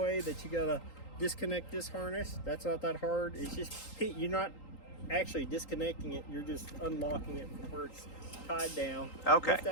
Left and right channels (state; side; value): late; right; 3.8 ms